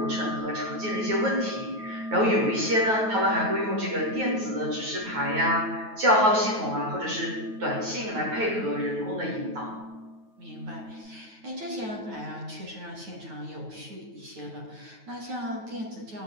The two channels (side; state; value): left; late; 9.2 ms